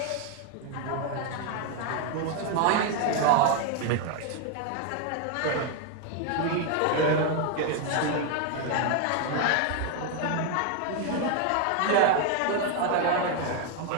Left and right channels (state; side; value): different; both; correlation 0.01